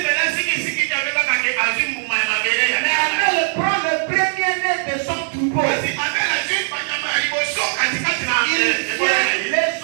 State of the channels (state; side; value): silent; left; digital silence